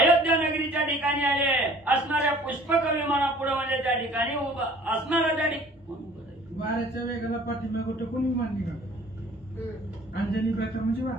नगरीच्या ठिकाणी आले. असणाऱ्या पुष्पक विमानापुढे म्हणजे त्या ठिकाणी उभा असणारा त्या वाऱ्याच्या वेगाला पाठीमागे टेकून विमान निघालं. अंजनी व्रत म्हणजे वा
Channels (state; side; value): normal; both; correlation 0.51